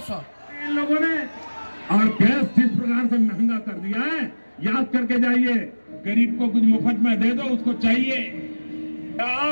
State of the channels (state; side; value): inverted; both; correlation -1.00